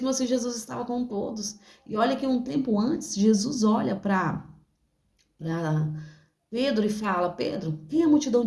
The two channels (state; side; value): identical; both; correlation 1.00